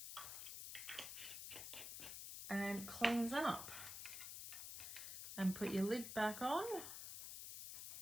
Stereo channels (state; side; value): noise; left; hiss, 7 dB below the sound